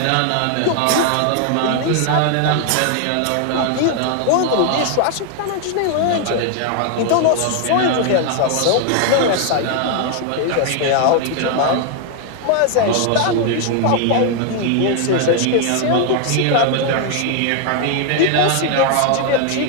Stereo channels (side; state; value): both; different; correlation 0.00